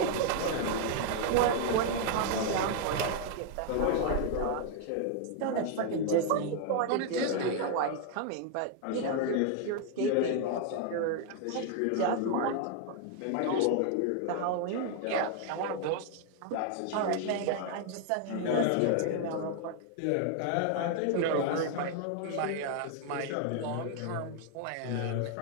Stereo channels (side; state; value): both; different; correlation 0.00